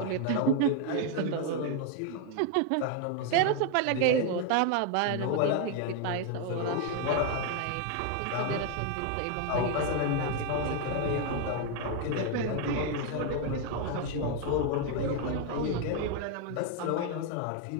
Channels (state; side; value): different; both; correlation 0.01